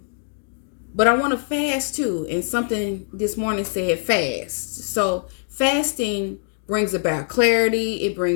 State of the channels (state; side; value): silent; right; digital silence